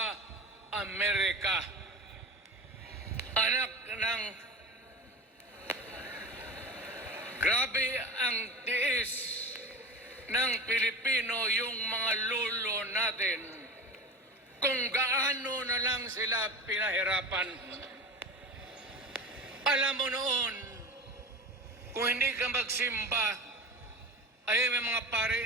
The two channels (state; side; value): normal; both; correlation 0.30